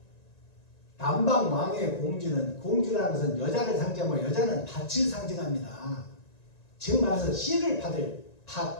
남방 왕의 공주라는 것은 여자를 상징하고 여자는 밭을 상징합니다. 즉 말해서 씨를 받을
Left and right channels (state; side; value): late; right; 1.9 ms